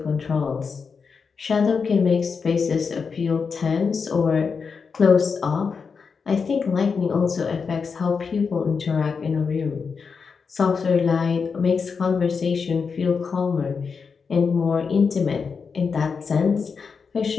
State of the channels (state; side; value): quieter; right; 5.5 dB